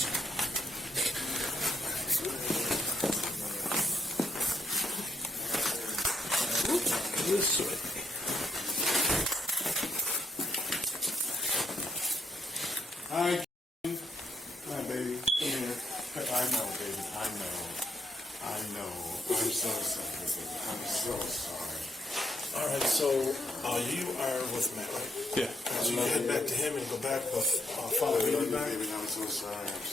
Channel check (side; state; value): both; normal; correlation 0.74